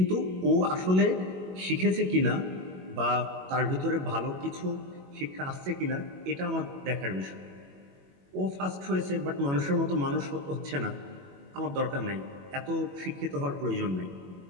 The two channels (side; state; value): left; late; 21 ms